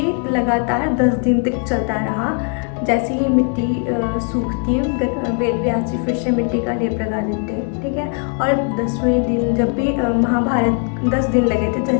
लगातार 10 दिन तक चलता रहा। जैसे ही मिट्टी सूखती, वेद व्यास जी फिर से मिट्टी का लेप लगा देते हैं, ठीक है। और 10वें दिन जब भी महाभारत 10 दिन लगे थे,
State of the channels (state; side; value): quieter; right; 36.9 dB